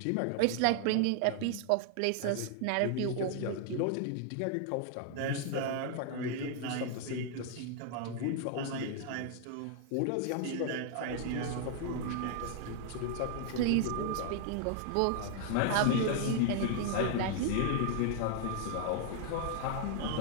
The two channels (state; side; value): different; both; correlation 0.00